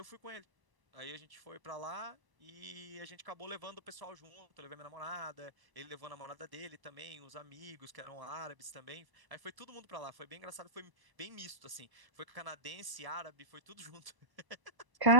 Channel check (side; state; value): left; late; 1.0 ms